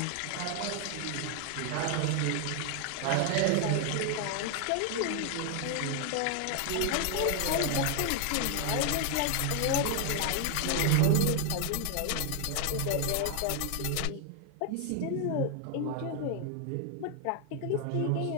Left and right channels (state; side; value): different; both; correlation 0.00